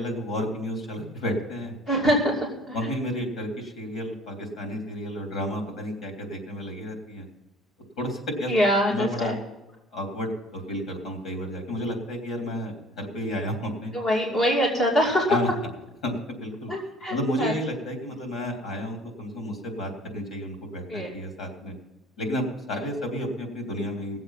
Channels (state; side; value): normal; both; correlation 0.50